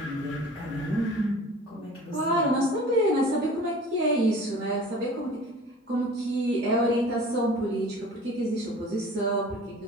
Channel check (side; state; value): both; normal; correlation 0.44